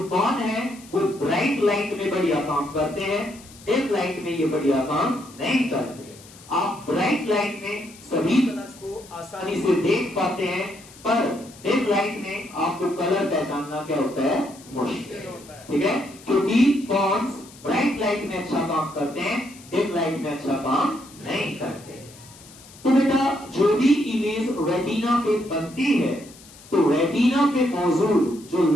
कौन है वो ब्राइट लाइट में बढ़िया काम करते हैं, डिम लाइट में ये बढ़िया काम नहीं करते। आप ब्राइट लाइट में सभी कलर्स को आसानी से देख पाते हैं, पर डिम लाइट में आपको कलर पहचानना क्या होता है? मुश्किल होता है। ठीक है। क्योंकि कॉन्स ब्राइट लाइट में अच्छा काम करते हैं, डिम लाइट में अच्छा काम नहीं करते। तो बेटा जो भी इमेज रेटिना पे बनती है, तो रेटिना पे मौजूद जो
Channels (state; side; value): noise; left; hiss, 21 dB below the sound